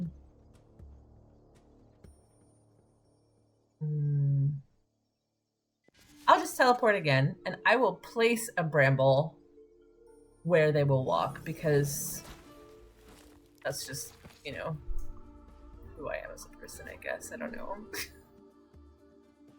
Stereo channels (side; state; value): both; identical; correlation 1.00